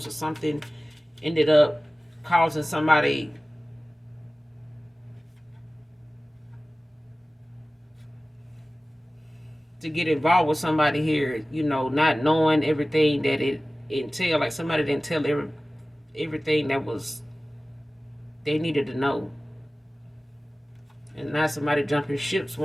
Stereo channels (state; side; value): normal; both; correlation 0.97